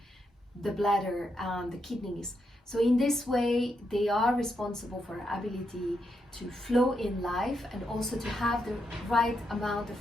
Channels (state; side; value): normal; both; correlation 0.82